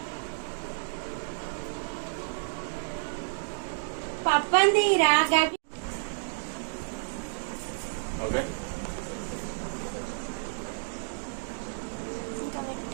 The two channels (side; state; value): left; silent; digital silence